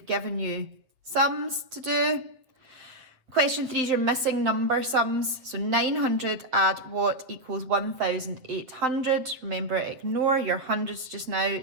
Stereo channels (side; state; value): left; late; 8.0 ms